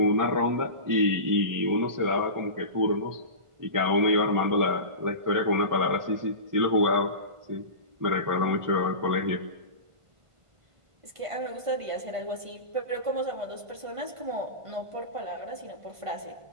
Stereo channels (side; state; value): left; late; 1.5 ms